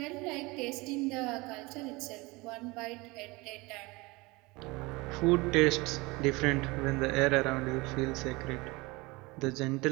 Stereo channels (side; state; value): left; quieter; 24.0 dB